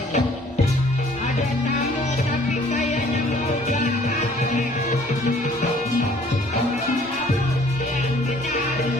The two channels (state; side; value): normal; both; correlation 0.57